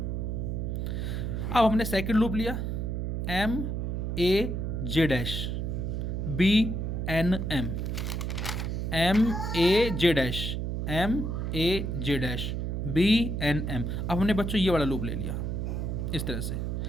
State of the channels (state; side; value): noise; right; hum, 2 dB below the sound